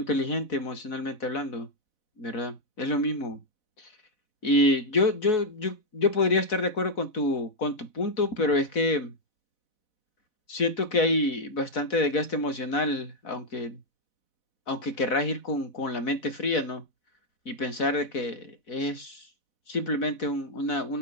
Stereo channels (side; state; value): right; late; 4.0 ms